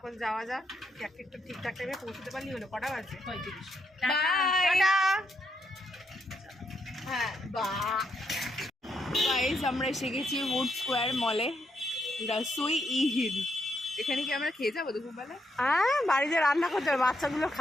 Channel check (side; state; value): both; normal; correlation 0.78